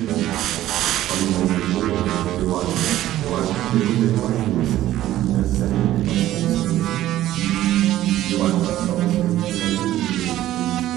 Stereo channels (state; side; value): quieter; left; 14.0 dB